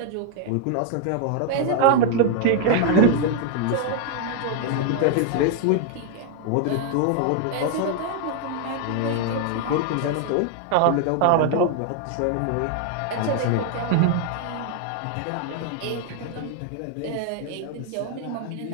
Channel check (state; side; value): different; both; correlation 0.00